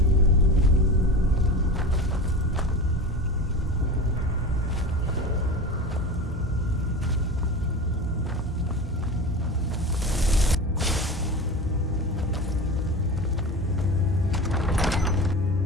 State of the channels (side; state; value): both; normal; correlation 0.30